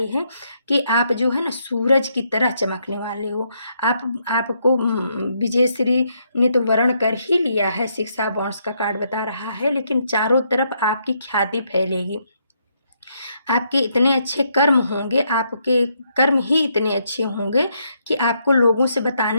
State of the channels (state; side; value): inverted; both; correlation -0.75